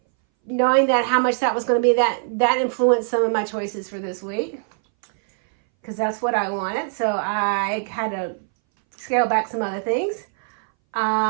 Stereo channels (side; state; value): left; silent; 62 dB below the other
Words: knowing that how much that was going to be, that influenced some of my choices for this week, because that's what I wanted. So I had to scale back some other things.